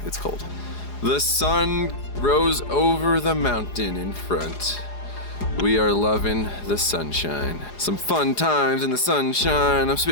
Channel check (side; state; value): right; late; 4.9 ms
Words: it's cold. The sun rose over the mountain in front. We are loving the sunshine. Some fun times in the sunshine. I'm